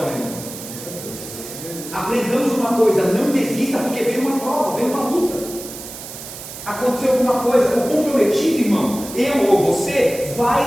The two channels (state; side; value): noise; right; hiss, 12 dB below the sound